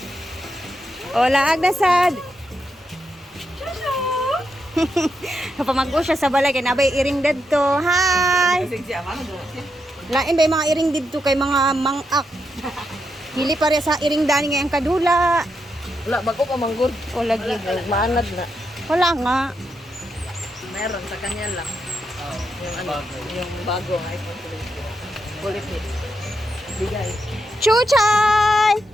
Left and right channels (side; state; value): both; normal; correlation 0.83